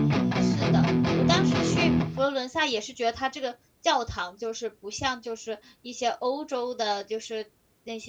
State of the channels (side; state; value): both; identical; correlation 1.00